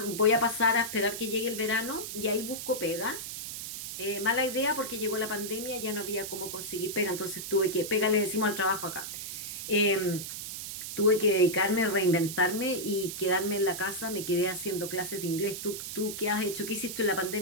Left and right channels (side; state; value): right; noise; hiss, 7 dB below the sound